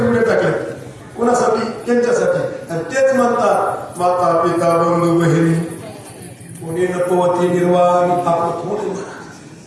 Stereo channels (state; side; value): identical; both; correlation 1.00